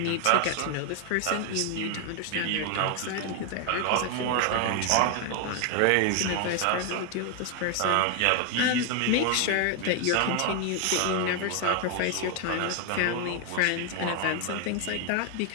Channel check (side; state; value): both; different; correlation 0.01